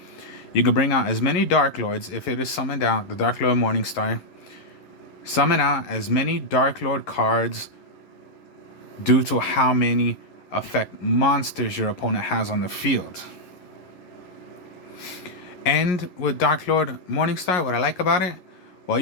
You can bring out as many Darklords if it is summoned out, the Darklord Morningstar. Summon out as many Darklord cards due to how many effect monsters your opponent has on the field. And with Darklord Morningstar, what I like about it, well,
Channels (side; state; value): right; late; 11 ms